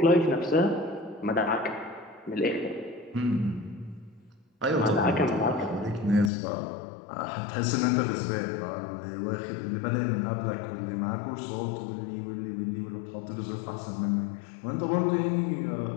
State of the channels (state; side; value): drops out; right; at 6.3 s